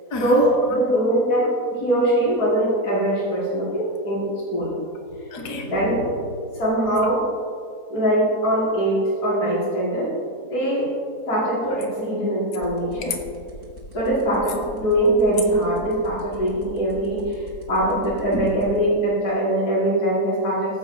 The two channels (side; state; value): right; late; 4.7 ms